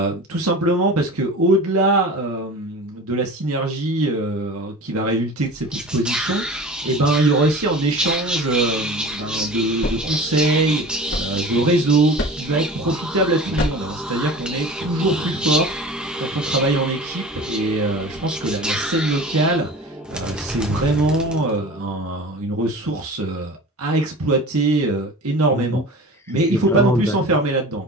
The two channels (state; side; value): normal; both; correlation 0.37